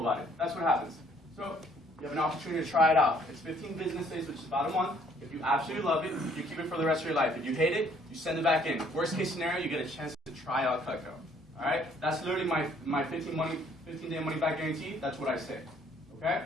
it. That's what happens. So you have an opportunity to try it out. It's 15 business days, which is about a month. If you absolutely love it, you keep it for the rest of your life. If you hate it, you send it back in. Worst case scenario, you get a chance to try out Cutco. All right? That's literally my 15-day money back guarantee. That's what I say. Okay?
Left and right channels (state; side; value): normal; both; correlation 0.62